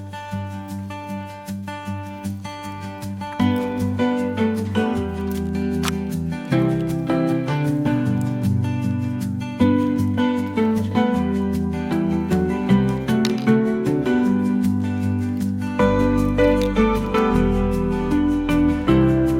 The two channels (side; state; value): both; identical; correlation 1.00